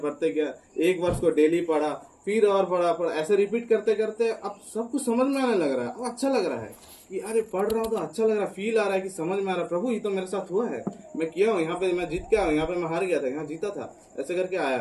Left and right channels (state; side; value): identical; both; correlation 1.00